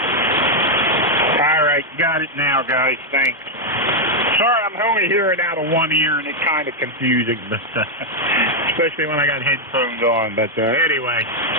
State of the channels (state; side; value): normal; both; correlation 0.00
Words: All right, got it now, guys. Thanks. Sorry, I'm only hearing out of one ear, and it's kind of confusing, but especially when I got headphones on. But anyway,